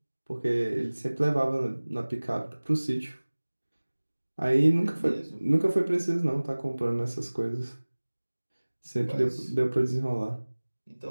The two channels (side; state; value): both; inverted; correlation -1.00